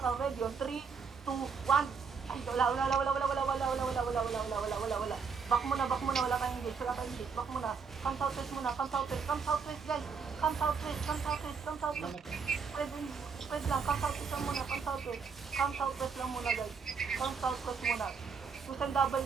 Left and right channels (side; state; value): left; quieter; 5.7 dB